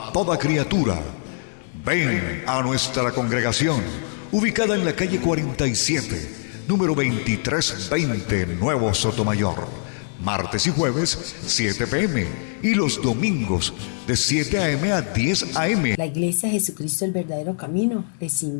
toda criatura. Ven a nuestra congregación, ubicada en la calle 47, número 2320, Nuevo Sotomayor. Martes y jueves, 7 p.m. y los domingos, de 7 a.m. a 10 a.m. La Iglesia Jesucristo el Verdadero Camino les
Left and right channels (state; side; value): silent; right; 59 dB below the other